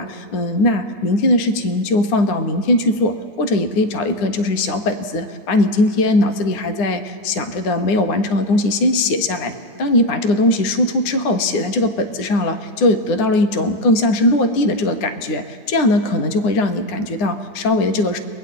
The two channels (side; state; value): right; late; 9.8 ms